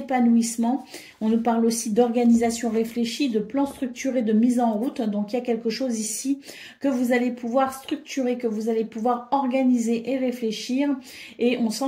On nous parle aussi d'organisation réfléchie, de plan structuré, de mise en route. Donc il y a quelque chose ici que vous allez pouvoir structurer, que vous allez pouvoir organiser et réfléchir. Et on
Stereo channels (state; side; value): identical; both; correlation 1.00